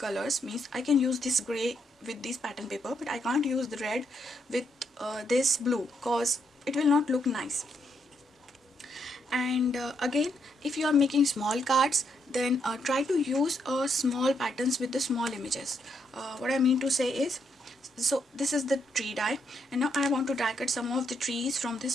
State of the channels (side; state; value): both; normal; correlation 0.77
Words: Means I can use this gray with this pattern paper, but I can't use the red with this blue cause it will not look nice. And again, if you are making small cards, then try to use small patterns with the small images. What I mean to say is, so this is the tree die, and now I want to die cut some of the trees from